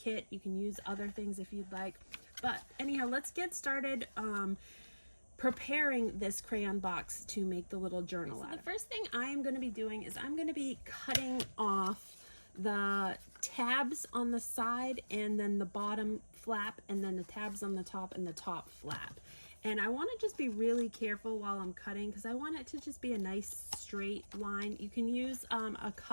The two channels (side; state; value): both; inverted; correlation -1.00